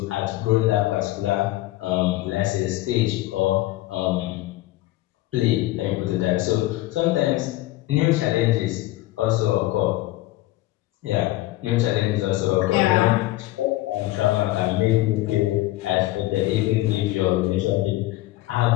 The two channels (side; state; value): right; quieter; 17.3 dB